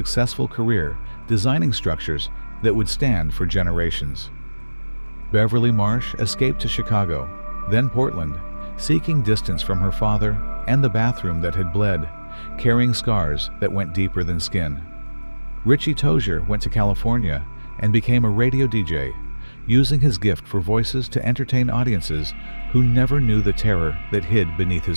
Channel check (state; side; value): inverted; both; correlation -1.00